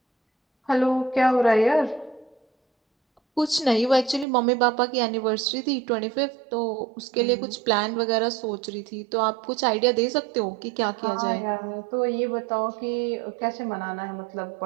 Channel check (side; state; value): left; drops out; at 4.2 s